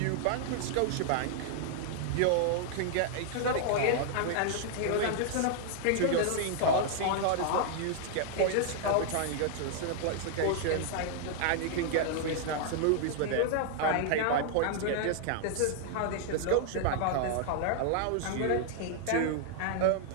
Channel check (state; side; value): different; both; correlation 0.00